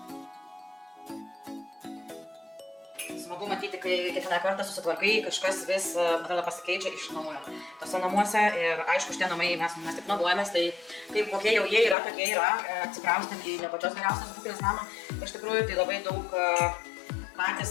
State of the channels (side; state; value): right; drops out; at 12.0 s